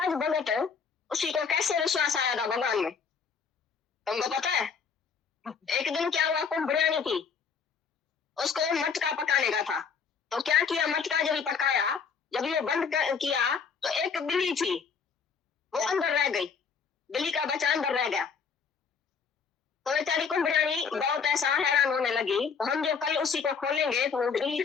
जो भगत है उसी को कैसे विश्वास आया था भगवान में, तुमको पता है? एक दिन क्या हुआ, कुंभ बिरयानी थी, उसको मटका पकाने का था, तो क्या किया, मटका जब पकाया, जब ये बंद किया तो एक बिल्ली थी वो अंदर रह गई, बिल्ली का बच्चा अंदर रह गया। तो बेचारी कुंभ बिरयानी बहुत ऐसा हैरान होने लगी, तो हम जो कल उसी को खोलेंगे तो वो बिल्ली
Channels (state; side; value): quieter; right; 6.0 dB